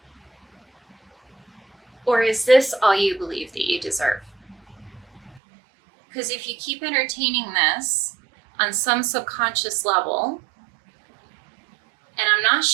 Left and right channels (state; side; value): drops out; left; at 5.4 s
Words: Or is this all you believe that you deserve? Because if you keep entertaining this on some subconscious level, and I'm not